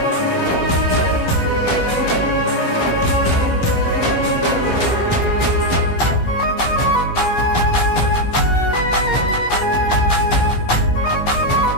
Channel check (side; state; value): right; late; 15 ms